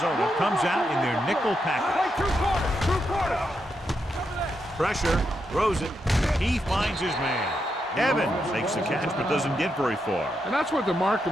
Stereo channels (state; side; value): normal; both; correlation 0.83